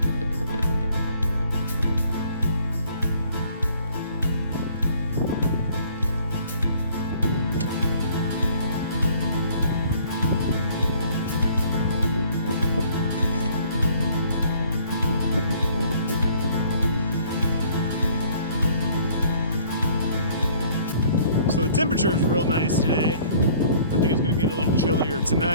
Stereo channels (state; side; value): inverted; both; correlation -0.57